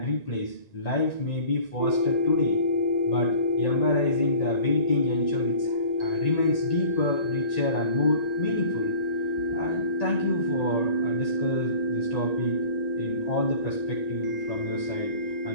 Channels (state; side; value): late; right; 1.9 ms